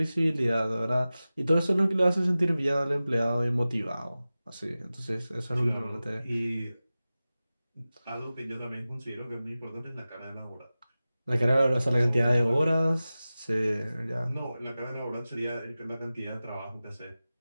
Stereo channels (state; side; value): inverted; both; correlation -0.96